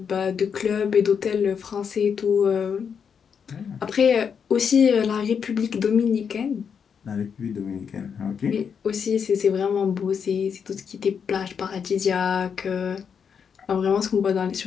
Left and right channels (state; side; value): quieter; right; 6.9 dB